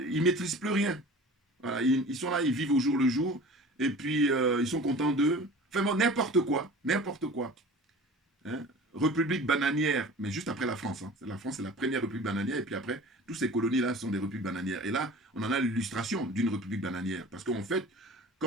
ne maîtrisent plus rien. Voilà, ils sont là, ils vivent au jour le jour, et puis ils sont contents d'eux. Enfin bon, n'importe quoi, n'importe quoi. Hein? république bananière, mais juste après la France. Hein. La France, c'est la première république bananière, et puis après, toutes ces colonies-là sont des républiques bananières. Et là, on en a l'illustration d'une république bananière. Parce qu'en fait,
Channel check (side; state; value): both; normal; correlation 0.40